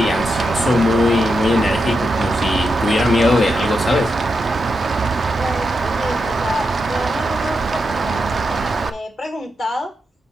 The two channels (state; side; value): normal; both; correlation 0.86